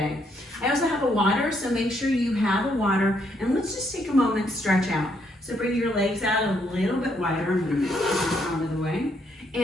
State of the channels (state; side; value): normal; both; correlation 0.73